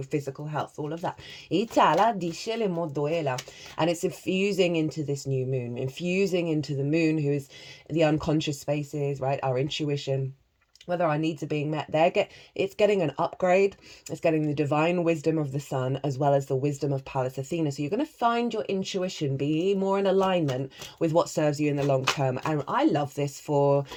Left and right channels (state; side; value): identical; both; correlation 1.00